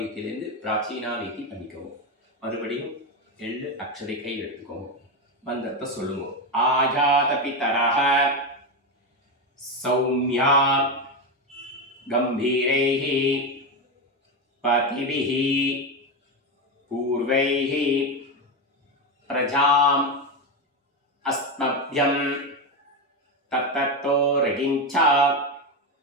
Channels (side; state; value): both; normal; correlation 0.13